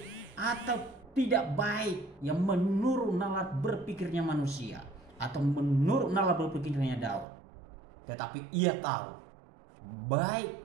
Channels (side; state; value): left; drops out; at 7.2 s